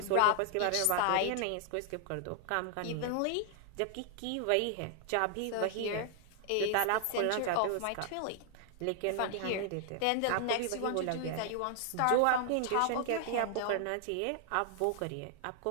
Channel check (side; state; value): both; different; correlation 0.00